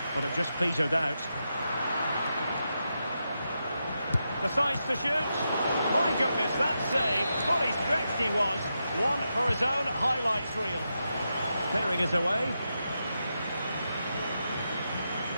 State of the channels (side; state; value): both; inverted; correlation -0.86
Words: But it just petered out. Decides to shoot. My goodness, that save. Fully stretched he was. One for his own highlights reel. Clearing it away.